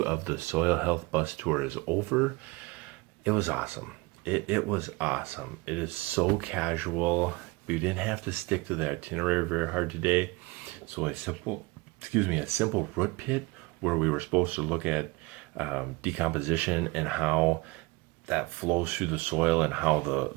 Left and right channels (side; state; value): left; quieter; 24.1 dB